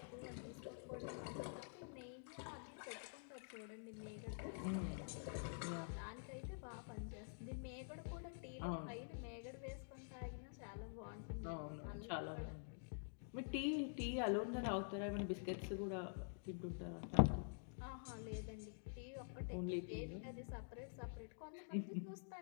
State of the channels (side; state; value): right; silent; digital silence